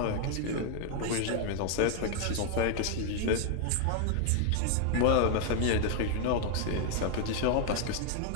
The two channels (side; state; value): both; different; correlation 0.00